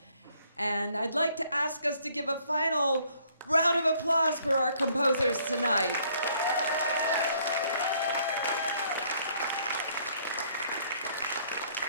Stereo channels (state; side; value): inverted; both; correlation -0.64